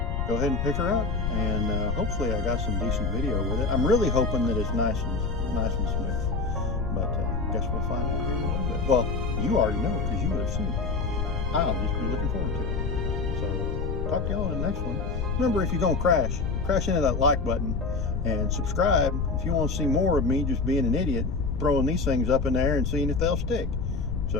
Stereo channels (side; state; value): left; noise; rumble, 1 dB below the sound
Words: go ahead and pick her up, and hopefully I got some decent video with it. I'm really hoping that it's nice and smooth. But I guess we'll find out here in a little bit. Well, you already know because you would have seen it. I'll just be looking forward to it. So talk to y'all in the next one. Remember, if you're going to crash into that like button and subscribe if you want to see more of me just being an idiot, throwing these things up in the air and seeing if they'll stick.